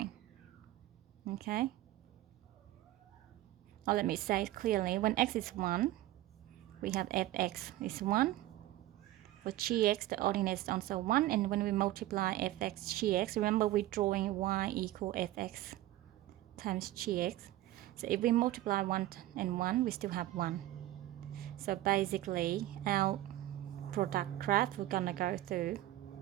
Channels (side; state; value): left; quieter; 15.2 dB